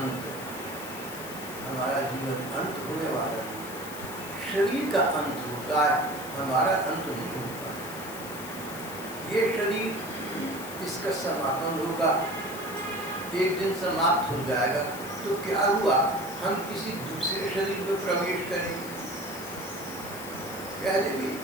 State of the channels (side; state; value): left; noise; hiss, 13 dB below the sound